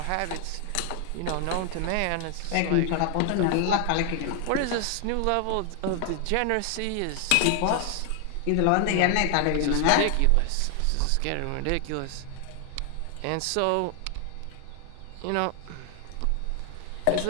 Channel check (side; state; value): both; different; correlation 0.00